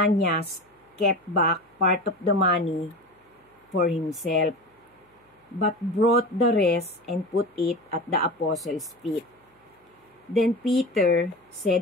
kept back part of the money for himself, but brought the rest and put it at the apostles' feet. Then Peter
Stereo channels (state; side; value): normal; both; correlation 0.29